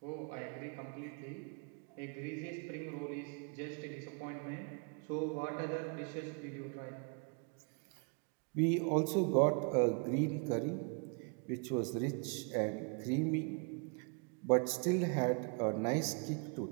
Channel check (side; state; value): left; quieter; 36.5 dB